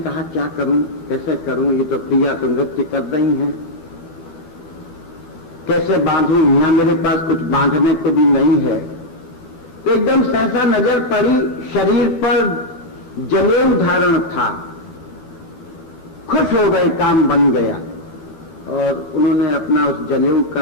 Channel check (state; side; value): late; right; 12 ms